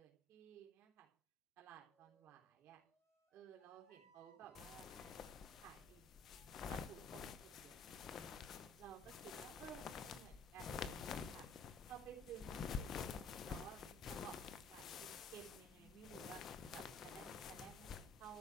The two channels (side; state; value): right; quieter; 3.6 dB